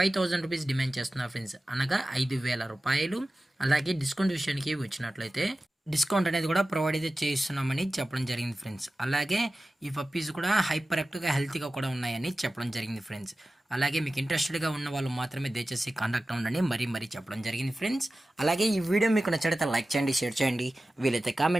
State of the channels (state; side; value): normal; both; correlation 0.95